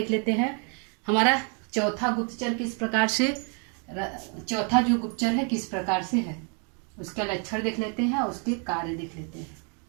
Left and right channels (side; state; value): left; quieter; 38.8 dB